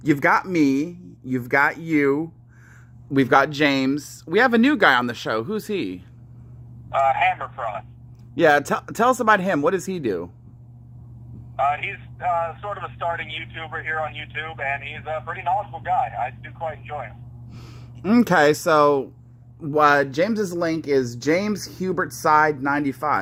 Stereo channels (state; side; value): identical; both; correlation 1.00